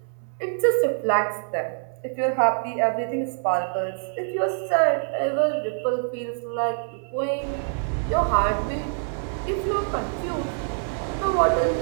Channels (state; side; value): silent; left; 62 dB below the other